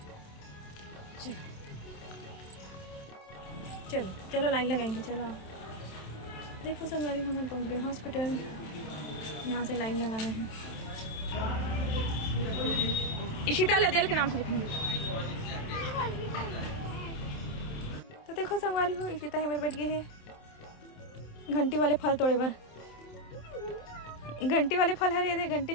चलो चलो चलो लाइन लगाएंगे, चलो आप देखो संगवारी हो, हम पहुँच गए हॉस्पिटल। यहाँ से लाइन लगाना है। इशिता लदेल के नाम से लिखेंगे। तो देखो संगवारी हो, इशिता है मेरे बैठ गए है घंटी वाले फल तोड़े भर। घंटी वाले फल हरे थे, घंटे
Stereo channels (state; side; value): late; right; 27 ms